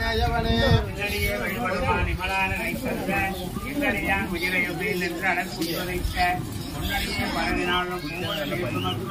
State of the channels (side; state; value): both; identical; correlation 1.00